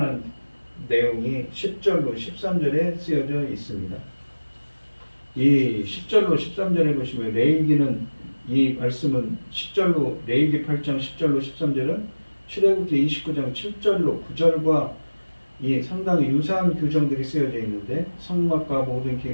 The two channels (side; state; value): both; inverted; correlation -1.00